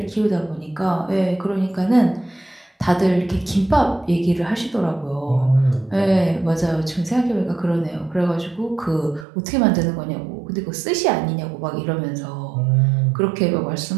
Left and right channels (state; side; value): drops out; left; at 9.2 s